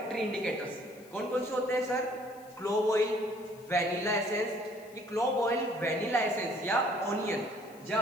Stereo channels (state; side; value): noise; left; hiss, 24 dB below the sound